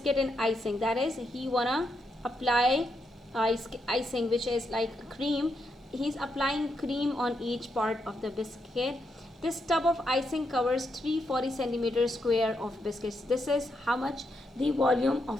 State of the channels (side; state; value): both; normal; correlation 0.81